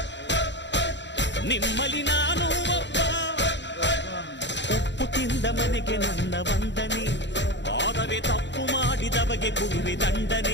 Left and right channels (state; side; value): late; right; 0.52 ms